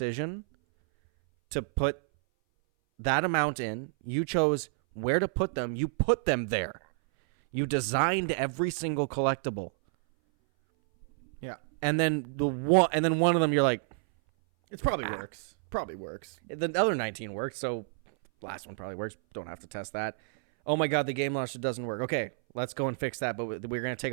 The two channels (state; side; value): silent; left; 58 dB below the other